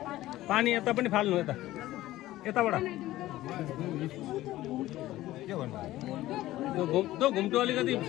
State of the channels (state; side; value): quieter; right; 15.9 dB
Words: पानी यता पनि फाल्नु यता यताबाट त्यो घुम्टो अलिकति